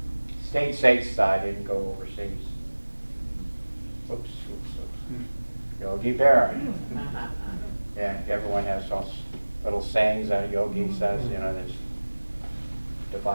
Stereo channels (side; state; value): both; inverted; correlation -1.00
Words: Stayed stateside, didn't go overseas. Oops. Yogi Berra. Yeah, everyone has those little sayings that Yogi says, there's